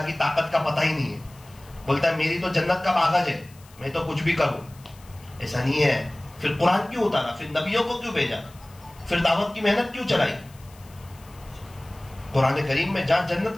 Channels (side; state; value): left; noise; hiss, 25 dB below the sound